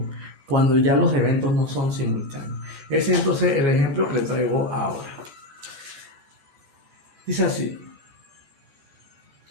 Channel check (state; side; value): late; left; 14 ms